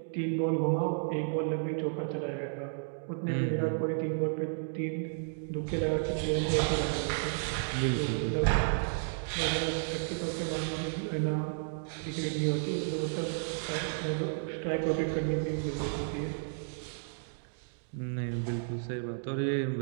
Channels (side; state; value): left; silent; digital silence